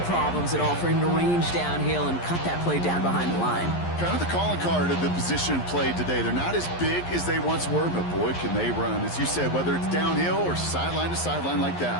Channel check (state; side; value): late; right; 11 ms